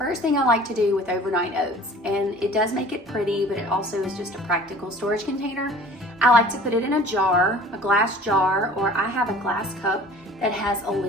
thing I like to do with overnight oats, and it does make it pretty, but it also is just a practical storage container. I like to put it in a jar, a glass jar, or I have a glass cup that has a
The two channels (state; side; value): normal; both; correlation 0.46